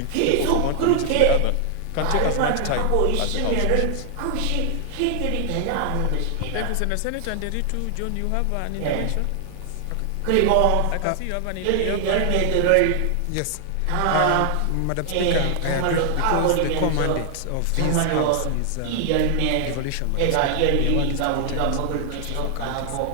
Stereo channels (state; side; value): different; both; correlation 0.00